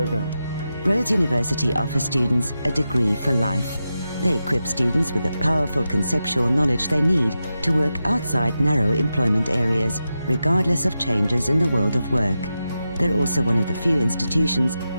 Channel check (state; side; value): inverted; both; correlation -0.90